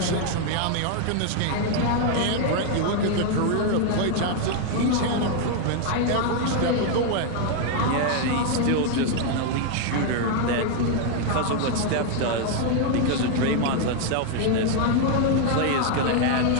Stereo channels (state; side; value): different; both; correlation 0.00